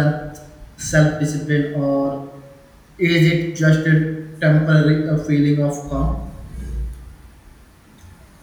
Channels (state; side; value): identical; both; correlation 1.00